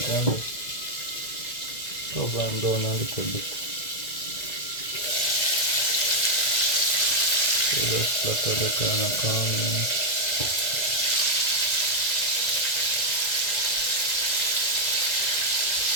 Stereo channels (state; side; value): late; right; 2.0 ms